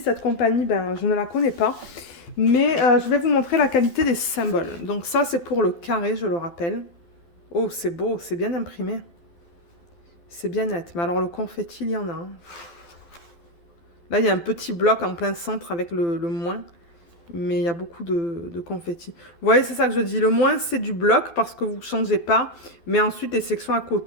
compagnie, ben, je ne la connais pas. Mais je vais vous montrer la qualité des symboles. Donc, ça, c'est pour le carré, je le rappelle. Oh, c'est beau, c'est bien imprimé. C'est bien net. Mais alors, le confetti, il y en a un. Là, il y a un petit bloc en plein centre avec le moins, mais il y a beaucoup de confettis. Vous voyez, c'est ça que je dis. Le moins, c'est du bloc parce que vous ne changez pas. Mais ensuite, les sections à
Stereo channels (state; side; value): late; right; 12 ms